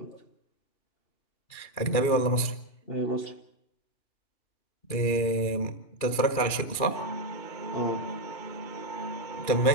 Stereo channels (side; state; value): right; late; 2.4 ms